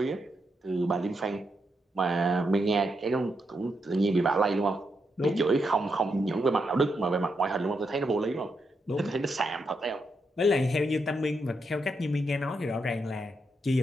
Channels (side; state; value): both; normal; correlation 0.82